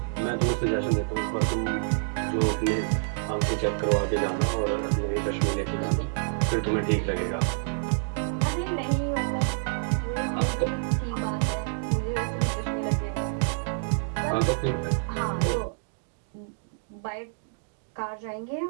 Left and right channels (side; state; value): left; silent; digital silence